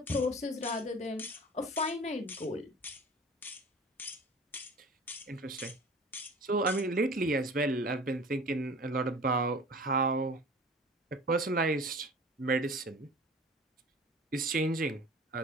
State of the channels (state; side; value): normal; both; correlation 0.42